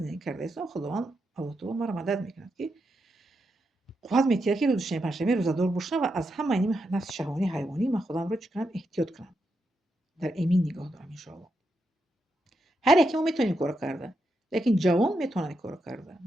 карда истам. Худованд Аллоҳ таоло маро мадад мекунад ки қувват метиҳад ки рӯзи шанбе панҷшанбе рӯзадор бошам ва аз ҳама ин нафси шаҳвонӣ ҳайвонӣ ман худамро чӣ кунам? Эҳтиёт кунам. Дар эмин нигоҳ дорам иншоаллоҳ. ҳар яке мо метавонем ин корро карда, лекин ҷавон метавонад ин корро карда.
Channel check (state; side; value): normal; both; correlation 0.84